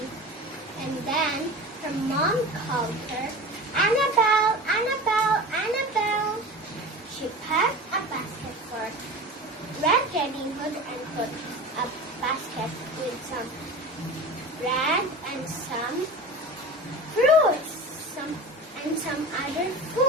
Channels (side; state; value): both; normal; correlation 0.33